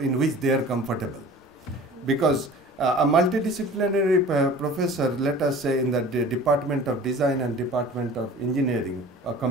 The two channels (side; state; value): both; normal; correlation 0.43